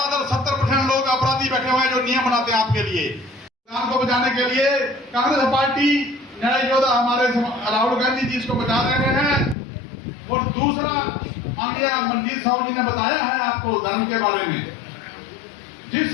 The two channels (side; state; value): right; drops out; at 9.6 s